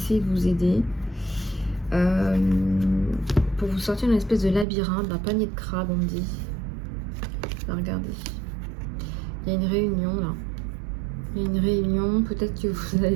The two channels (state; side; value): drops out; left; at 4.7 s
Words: de vous aider. Pour vous sortir d'une espèce de labyrinthe, d'un panier de crabes, on me dit. Regardez. Il y a une réunion là. Il y a une réunion. Peut-être que vous allez